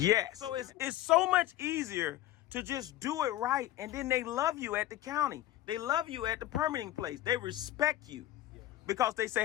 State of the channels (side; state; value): right; quieter; 14.5 dB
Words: So it's so much easier to just do it right, and then they love you at the county. They love you at the permitting place. They respect you because they say,